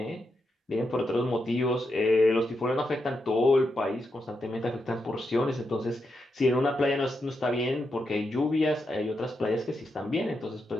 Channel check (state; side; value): normal; both; correlation 0.84